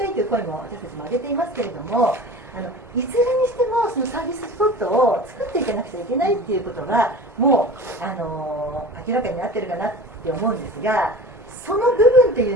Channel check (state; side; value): normal; both; correlation 0.37